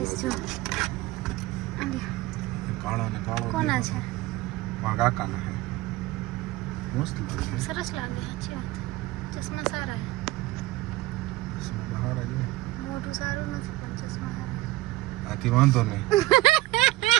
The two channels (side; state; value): left; quieter; 18.6 dB